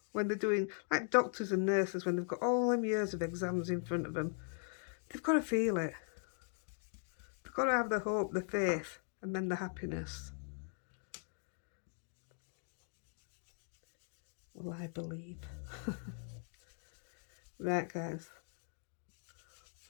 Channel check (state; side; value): silent; right; 51 dB below the other